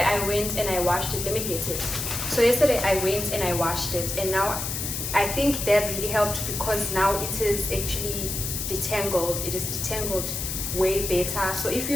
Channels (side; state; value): left; noise; hiss, 4 dB below the sound